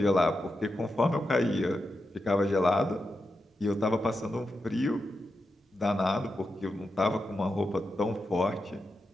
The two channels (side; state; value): both; normal; correlation 0.88